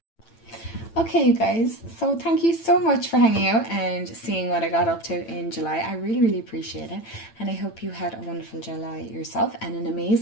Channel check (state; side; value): late; right; 8.9 ms